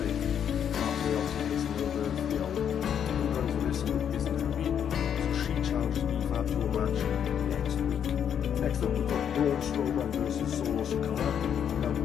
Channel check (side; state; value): right; quieter; 8.6 dB